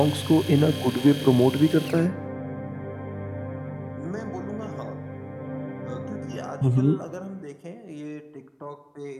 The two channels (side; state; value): both; identical; correlation 1.00